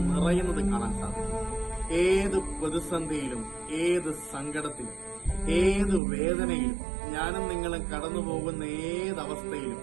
നിറയുന്നത് കാണാൻ സാധിക്കും. ഏത് പ്രതിസന്ധിയിലും, ഏത് സങ്കടത്തിലും, ഏത് വേദനയിലും, ഞാനും നിങ്ങളും കടന്നുപോകുന്ന ഏതവസ്ഥയിലും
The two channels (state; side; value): drops out; left; at 6.0 s